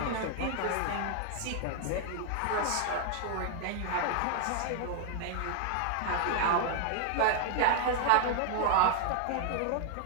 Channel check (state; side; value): different; both; correlation 0.00